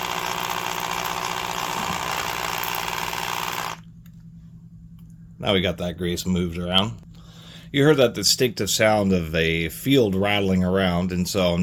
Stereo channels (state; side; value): identical; both; correlation 1.00